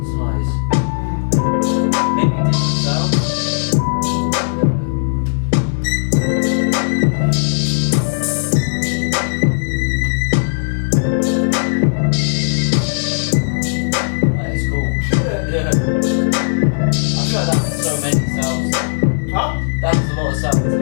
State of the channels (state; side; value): silent; right; digital silence